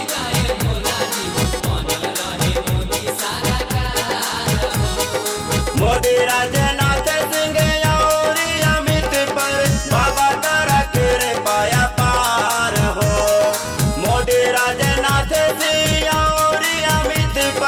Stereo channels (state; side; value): identical; both; correlation 1.00